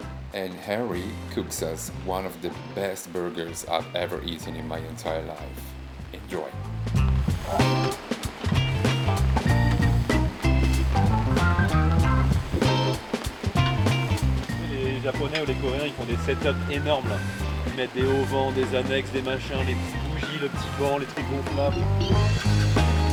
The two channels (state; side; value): identical; both; correlation 1.00